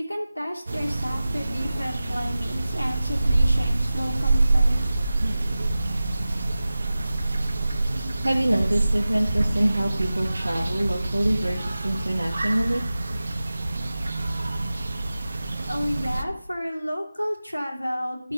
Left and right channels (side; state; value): both; inverted; correlation -0.96